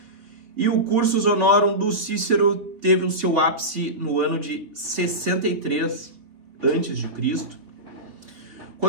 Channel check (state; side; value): late; left; 3.5 ms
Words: E o cursus honorum do Cícero teve o seu ápice no ano de 63 a.C.,